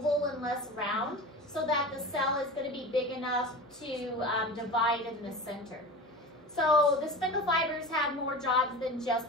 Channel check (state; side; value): normal; both; correlation 0.32